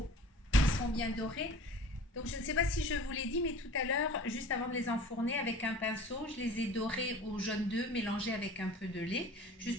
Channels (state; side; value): normal; both; correlation 0.44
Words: Ils sont bien dorés. Donc, je ne sais pas si je vous l'ai dit, mais tout à l'heure, juste avant de les enfourner avec un pinceau, je les ai dorés au jaune d'œuf mélangé avec un peu de lait,